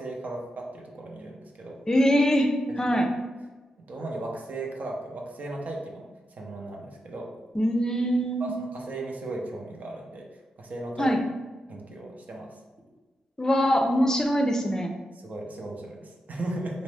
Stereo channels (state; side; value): normal; both; correlation 0.87